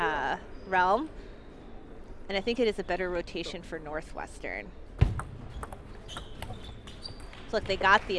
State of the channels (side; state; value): both; identical; correlation 1.00